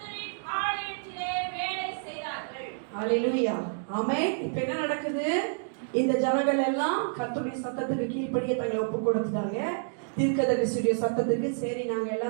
ஆலயத்திலே வேலை செய்தார்கள். அல்லேலூயா. ஆமென். இப்ப என்ன நடக்குது? இந்த ஜனங்கள் எல்லாம் கர்த்தருடைய சத்தத்துக்கு கீழ்ப்படியே தங்களை ஒப்பு கொடுத்துட்டாங்க. தீர்க்கதரிசியுடைய சத்தத்துக்கு சரி நாங்க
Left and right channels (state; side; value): silent; left; digital silence